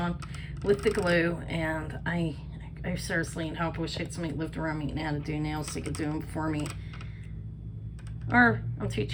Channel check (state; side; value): identical; both; correlation 1.00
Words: with the glue, and I seriously need help. I wish I had somebody lived around me and how to do nails so they could do them for me. Or I'm too